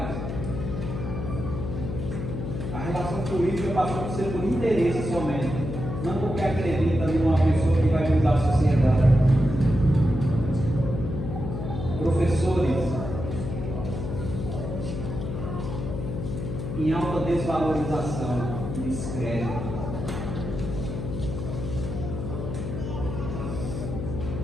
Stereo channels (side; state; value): left; noise; hum, 5 dB below the sound